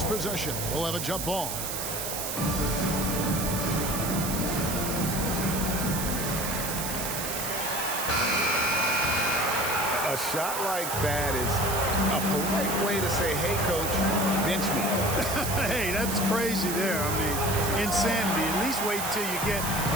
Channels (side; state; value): right; noise; hiss, 4 dB below the sound